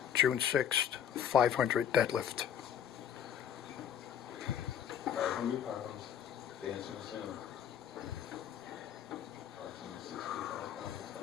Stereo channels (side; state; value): right; quieter; 9.2 dB